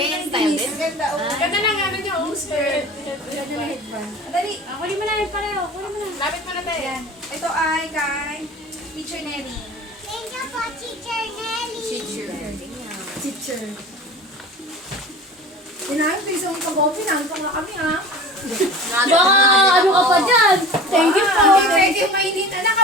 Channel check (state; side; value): normal; both; correlation 0.39